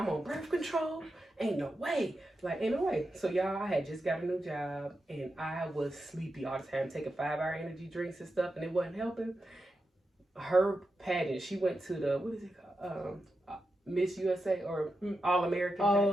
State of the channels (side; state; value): both; normal; correlation 0.88